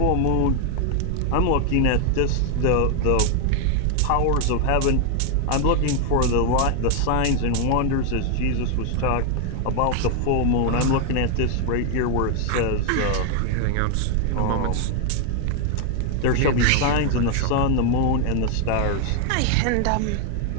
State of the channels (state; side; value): different; both; correlation 0.01